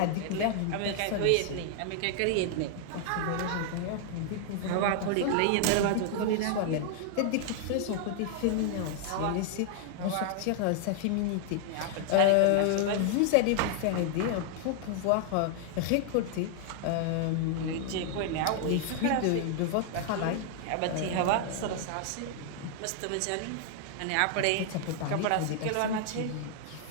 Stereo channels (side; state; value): both; different; correlation 0.00